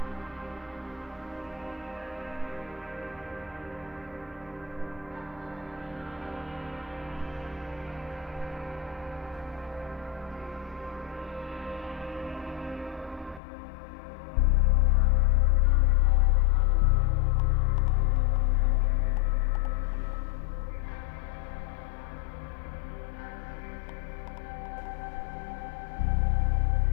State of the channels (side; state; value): right; drops out; at 13.4 s